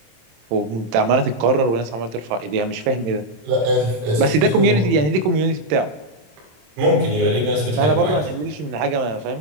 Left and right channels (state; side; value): late; left; 27 ms